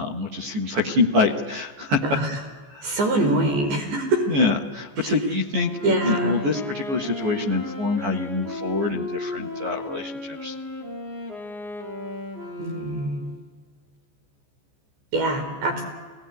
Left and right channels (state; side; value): late; left; 14 ms